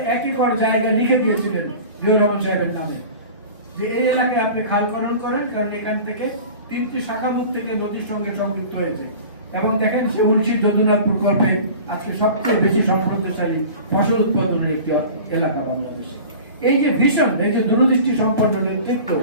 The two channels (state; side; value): inverted; both; correlation -0.39